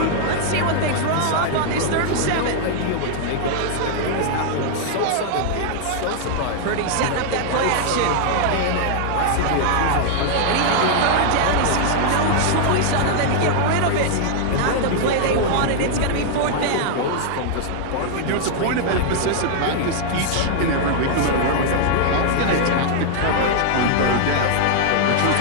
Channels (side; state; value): both; different; correlation -0.01